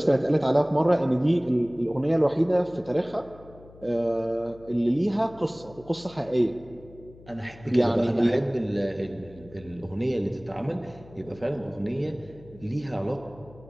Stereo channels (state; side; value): noise; left; hum, 22 dB below the sound